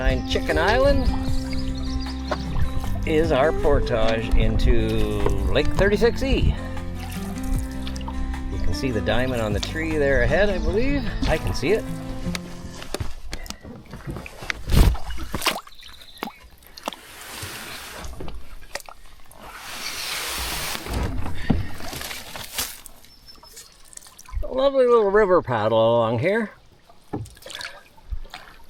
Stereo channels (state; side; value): identical; both; correlation 1.00